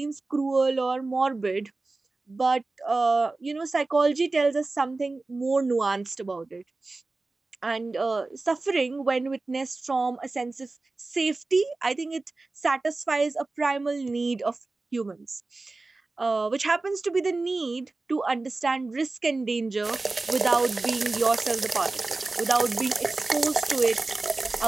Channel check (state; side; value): quieter; left; 3.4 dB